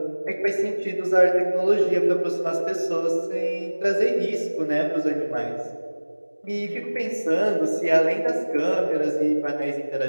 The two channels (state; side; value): inverted; both; correlation -1.00